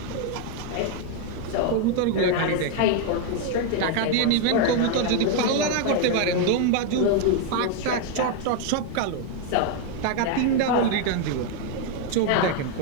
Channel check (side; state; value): both; different; correlation 0.01